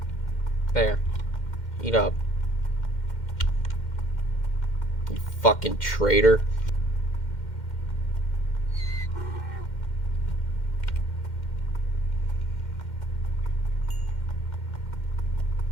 There, eat up, you fucking traitor.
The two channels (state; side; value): late; right; 2.1 ms